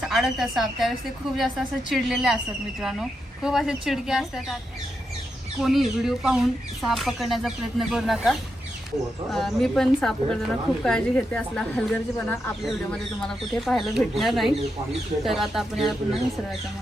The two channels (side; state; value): both; normal; correlation 0.85